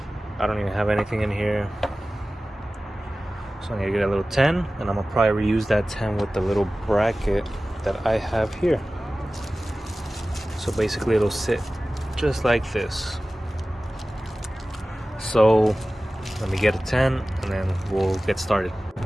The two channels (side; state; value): both; normal; correlation 0.97